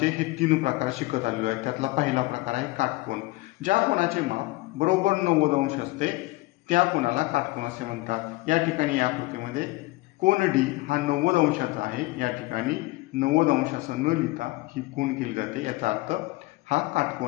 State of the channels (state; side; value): quieter; right; 21.0 dB